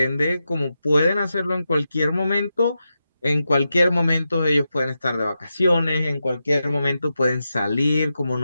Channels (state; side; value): inverted; both; correlation -0.89